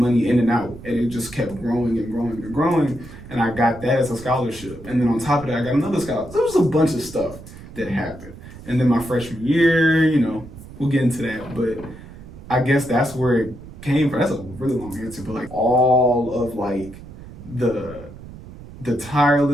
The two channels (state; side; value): noise; right; rumble, 16 dB below the sound